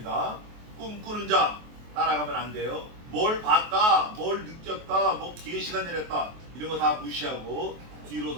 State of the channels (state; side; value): late; left; 23 ms